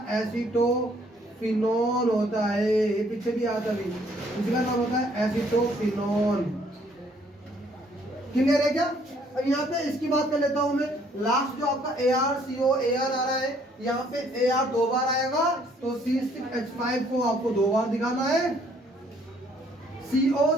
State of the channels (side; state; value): both; normal; correlation 0.64